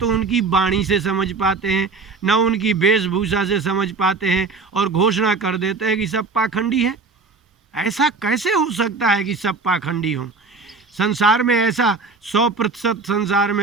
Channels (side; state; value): left; quieter; 4.3 dB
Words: उनकी वाणी से समझ पाते हैं, ना उनकी वेशभूषा से समझ पाते हैं, और घोषणा कर देते हैं कि सब पाखंडी हैं। ऐसा कैसे हो सकता है कि सब पाखंडी हों? संसार में ऐसा 100% संसार